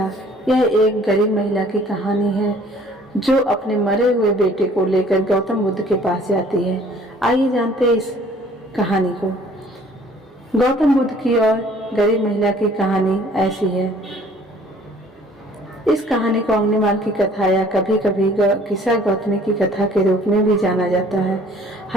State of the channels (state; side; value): normal; both; correlation 0.55